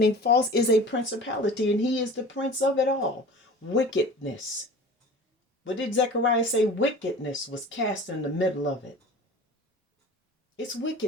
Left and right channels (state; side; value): normal; both; correlation 0.40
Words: falls, is a principality, and he is the prince of it all. Wickedness. What did Zechariah say? Wickedness was cast in the middle of it. It's